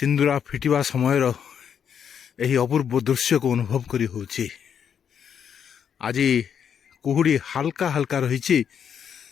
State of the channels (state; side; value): quieter; right; 8.0 dB